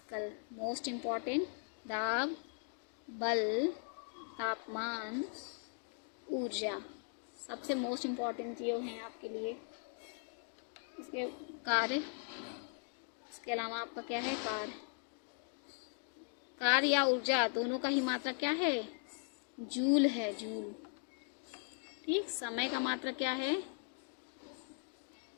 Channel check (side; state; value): right; silent; 52 dB below the other